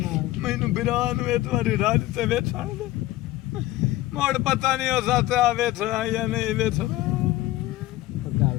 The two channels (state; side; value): quieter; right; 16.2 dB